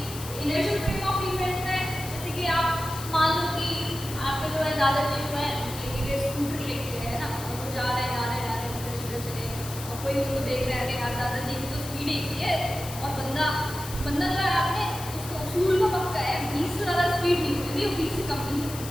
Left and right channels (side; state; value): left; noise; hiss, 11 dB below the sound